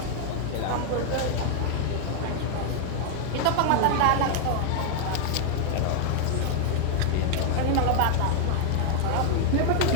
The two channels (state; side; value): different; both; correlation 0.00